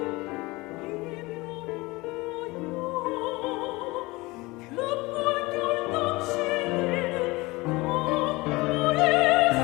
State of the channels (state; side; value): quieter; right; 22.4 dB